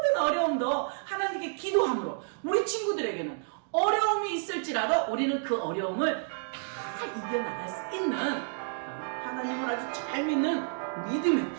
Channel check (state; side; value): silent; left; digital silence